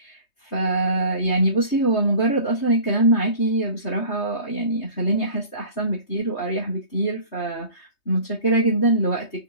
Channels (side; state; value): right; late; 3.2 ms